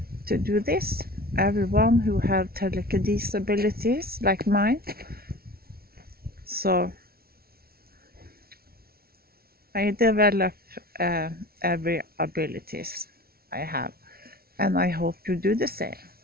to do this. Everyone who have telekinesis abilities like mine. So I develop every abilities I have, and I hope you do the same.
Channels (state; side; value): late; left; 0.44 ms